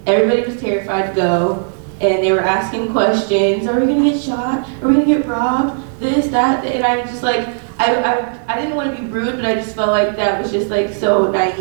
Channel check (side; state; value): left; silent; 69 dB below the other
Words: everybody was terrified to go, and they were asking questions. Are we gonna get shot? Are we gonna get robbed? This, that, and I was just like, I didn't want to be rude, but I just felt like that was just like so